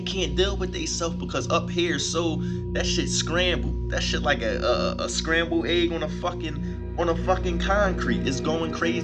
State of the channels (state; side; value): identical; both; correlation 1.00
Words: can't deal with themselves because up here, so that shit scrambled. That shit like a scrambled egg on a fucking concrete. It's going